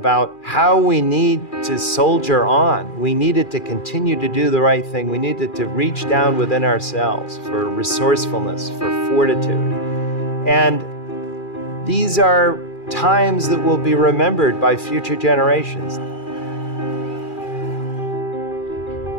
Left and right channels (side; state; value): right; late; 2.4 ms